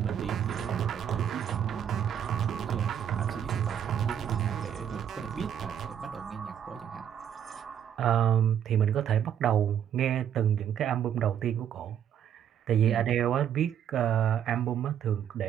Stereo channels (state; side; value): quieter; left; 9.3 dB